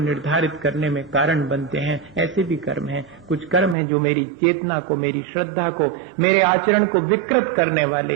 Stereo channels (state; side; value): drops out; left; at 3.8 s